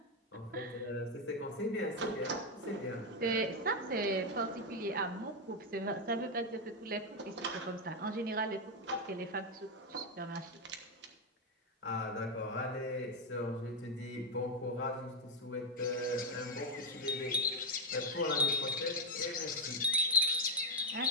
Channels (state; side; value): normal; both; correlation 0.03